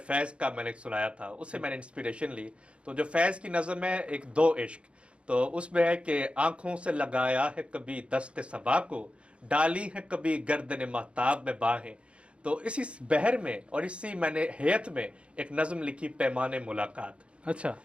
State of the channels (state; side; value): late; left; 0.059 ms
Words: फैज़ का मैंने सुनाया था, उससे मैंने इंस्पिरेशन ली। तो जो फैज़ की नज़म है, एक दो इश्क, तो उसमें है कि आंखों से लगाया है कभी दस्ते सबा को, डाली है कभी गर्दन महताब में बाहें। तो इसी बहर में और इसी मैंने हैत में एक नज़म लिखी, पैमाने मुलाकात। अच्छा।